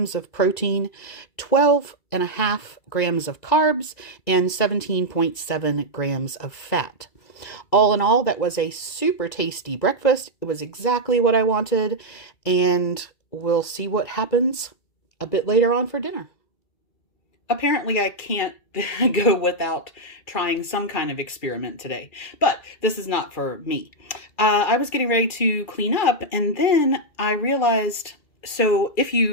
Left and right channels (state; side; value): late; right; 2.3 ms